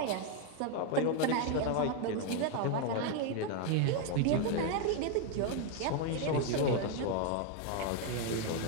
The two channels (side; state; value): both; different; correlation 0.01